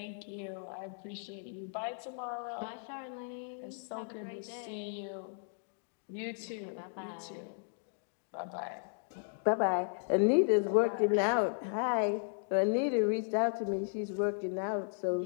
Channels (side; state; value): right; silent; digital silence